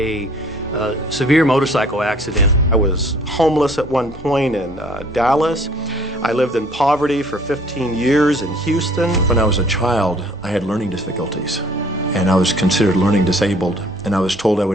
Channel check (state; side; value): normal; both; correlation 0.56